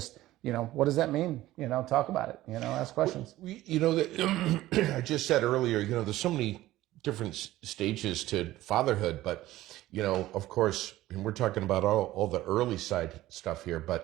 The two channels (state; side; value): quieter; left; 15.9 dB